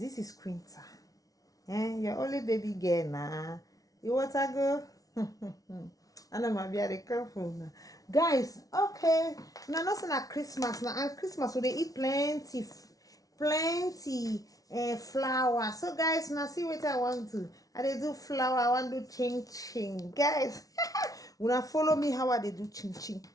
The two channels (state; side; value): late; right; 0.18 ms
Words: is Quinta. Your only baby girl now. You want to go? I know my be careful now. Guys, okay. Now nothing at Christmas now. And Christmas so they eat plenty flour. So guys, now see what I want to. I they do flour, I want to do ching ching. Guys, when I follow me how I they do ching ching.